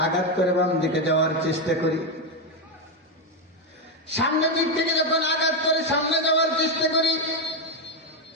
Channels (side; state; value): both; normal; correlation 0.07